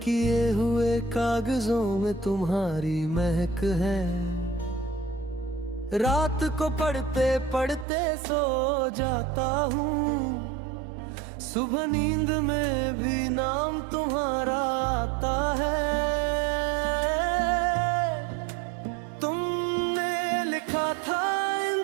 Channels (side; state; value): left; drops out; at 7.9 s